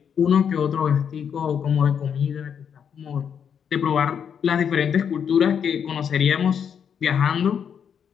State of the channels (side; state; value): right; quieter; 7.7 dB